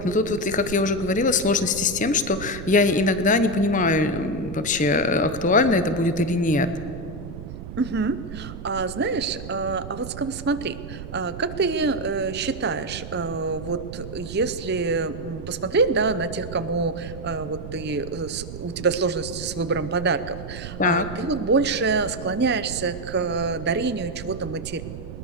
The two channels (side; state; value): right; noise; rumble, 10 dB below the sound